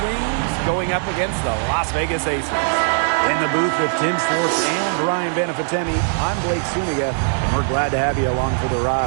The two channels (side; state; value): left; silent; digital silence